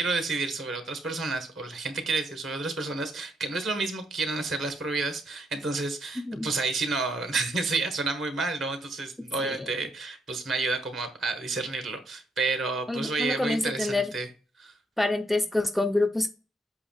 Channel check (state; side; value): normal; both; correlation 0.75